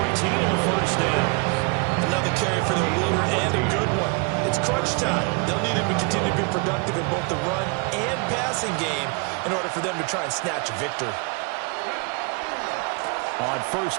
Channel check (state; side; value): quieter; left; 32.4 dB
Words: in the first down. Another carry for their leader and a good one. It's crunch time. They'll need him to continue to be productive in both the run and passing game in order for them to try and snatch a victory. On